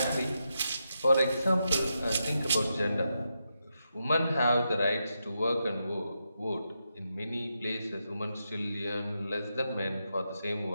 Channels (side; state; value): both; inverted; correlation -0.85